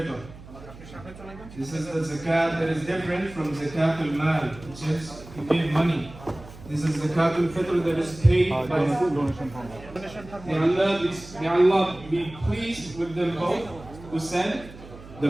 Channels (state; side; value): noise; right; hum, 17 dB below the sound